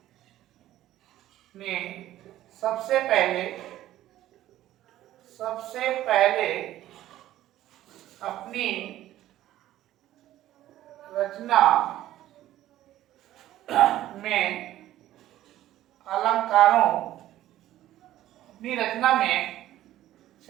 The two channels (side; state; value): left; quieter; 13.8 dB